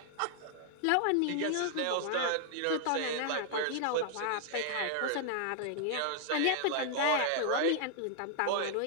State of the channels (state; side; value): different; both; correlation 0.00